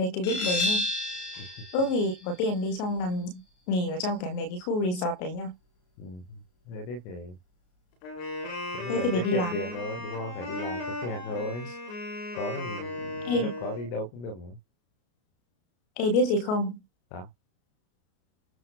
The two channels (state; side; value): late; right; 33 ms